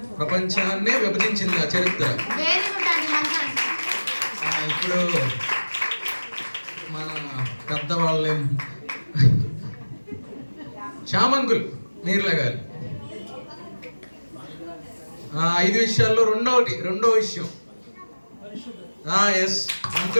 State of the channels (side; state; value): both; inverted; correlation -1.00